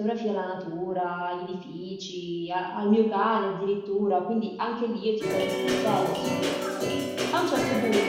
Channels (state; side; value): identical; both; correlation 1.00